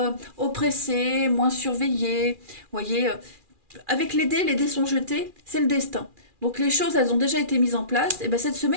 oppressé, moins surveillé. Voyez, avec les dés sont jetés, c'est le destin. Donc les choses, elles ont déjà été mises en place. Et bien cette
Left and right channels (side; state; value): left; late; 2.4 ms